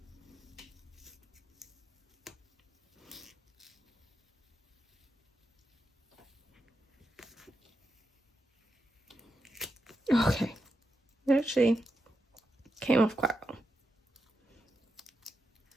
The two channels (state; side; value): normal; both; correlation 0.86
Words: Okay, it actually came off quite well.